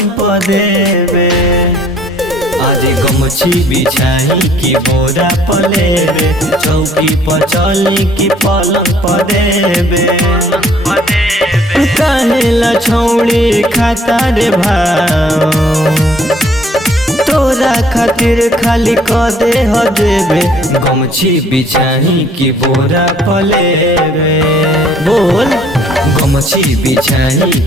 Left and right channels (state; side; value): normal; both; correlation 0.59